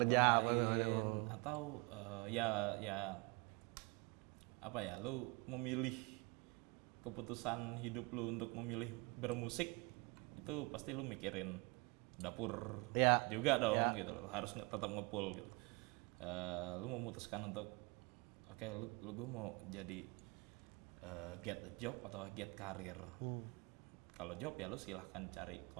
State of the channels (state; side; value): quieter; left; 28.6 dB